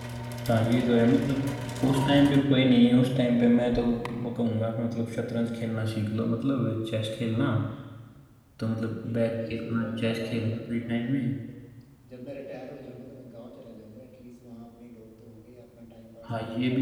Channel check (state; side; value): identical; both; correlation 1.00